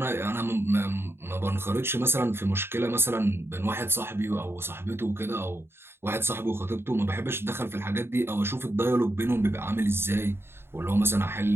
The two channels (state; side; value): late; left; 0.11 ms